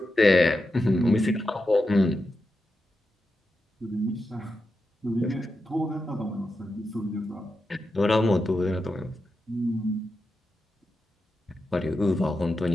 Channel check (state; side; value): normal; both; correlation 0.89